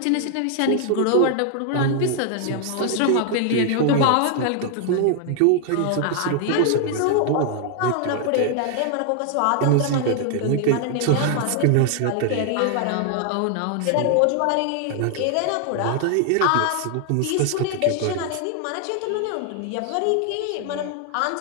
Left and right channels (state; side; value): different; both; correlation 0.00